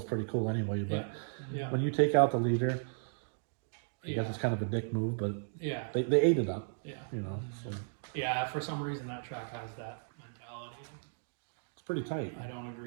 pretty cool anyway. But Yeah. when you take out the leader, I Yeah. guess it's kind of a dick move, but Yeah. they ate it up, Yeah. you know. So Yeah. For some reason, that track has that mentality. it's pretty tight. I don't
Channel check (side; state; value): left; silent; digital silence